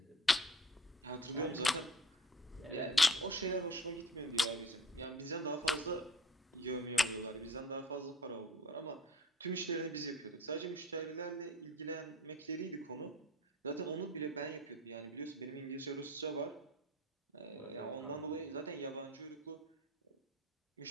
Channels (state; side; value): normal; both; correlation 0.43